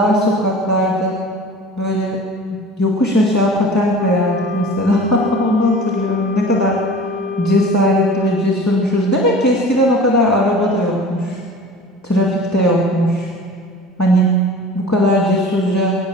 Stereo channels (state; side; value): normal; both; correlation 0.41